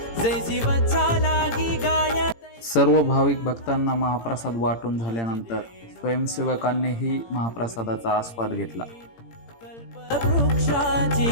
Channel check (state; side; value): late; right; 17 ms